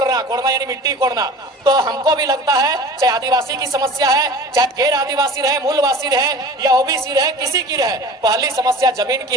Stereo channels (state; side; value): normal; both; correlation 0.40